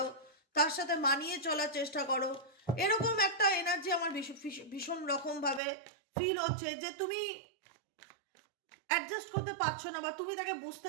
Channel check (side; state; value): left; drops out; at 5.6 s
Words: তার সাথে মানিয়ে চলার চেষ্টা করো। এরকম একটা এনার্জি আমার ভীষণ রকমভাবে ফিল হচ্ছে যে তুমি অ্যাডজাস্ট করতে পারছো না, বা তুমি তাকে বুঝতে